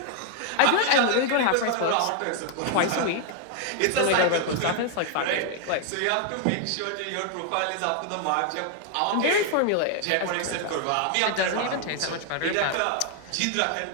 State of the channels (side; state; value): both; different; correlation 0.00